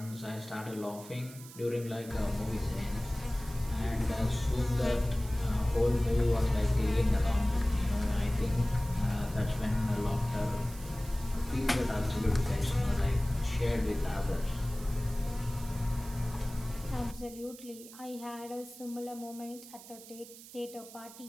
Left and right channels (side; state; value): right; noise; hiss, 17 dB below the sound